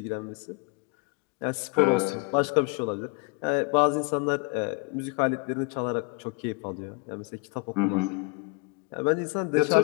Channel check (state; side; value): quieter; right; 27.6 dB